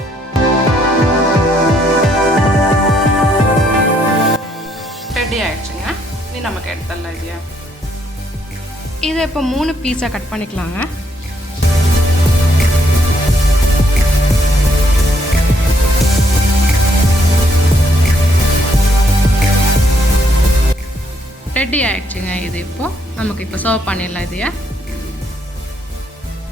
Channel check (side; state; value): both; normal; correlation 0.71